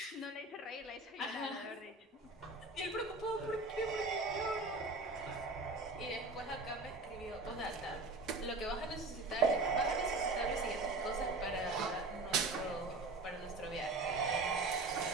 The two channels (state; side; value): quieter; left; 3.2 dB